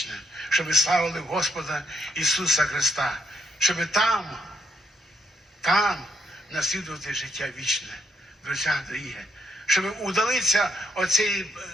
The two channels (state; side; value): normal; both; correlation 0.76